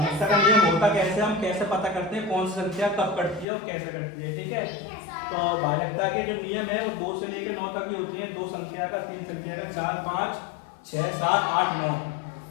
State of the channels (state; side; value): drops out; right; at 3.5 s